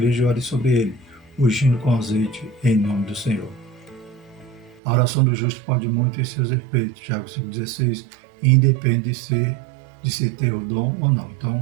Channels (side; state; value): left; drops out; at 4.8 s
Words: e ore sobre ele, ungindo com azeite em nome do Senhor. A oração do justo pode muito em seus efeitos. Tiago 5,16, independe de se ter o dom ou não.